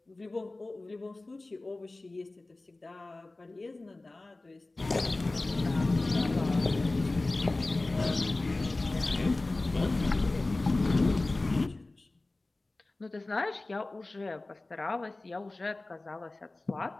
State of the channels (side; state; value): right; quieter; 3.0 dB